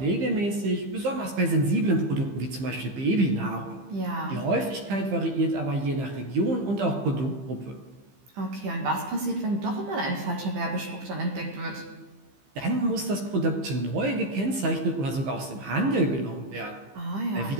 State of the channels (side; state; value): left; late; 15 ms